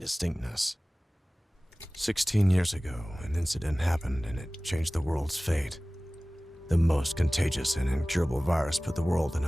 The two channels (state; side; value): normal; both; correlation 0.98